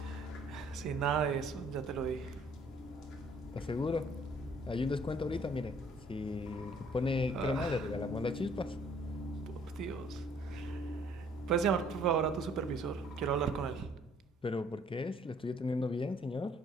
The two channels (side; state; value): both; normal; correlation 0.60